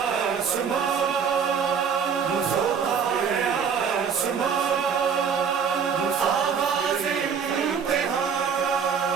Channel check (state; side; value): quieter; left; 6.6 dB